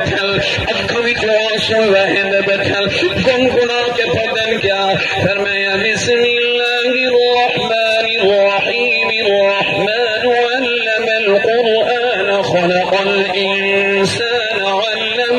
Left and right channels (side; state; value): both; identical; correlation 1.00